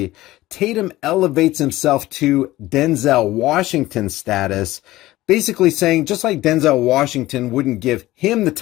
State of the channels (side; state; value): right; quieter; 17.1 dB